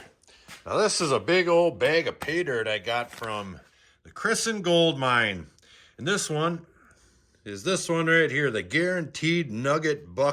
Now this is a big old bag of pay dirt I got from the Christened Gold Mine. And this one is this one right here, the Guaranteed Nugget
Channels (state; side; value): identical; both; correlation 1.00